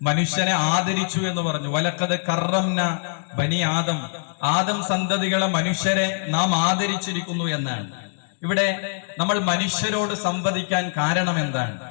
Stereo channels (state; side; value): silent; right; 63 dB below the other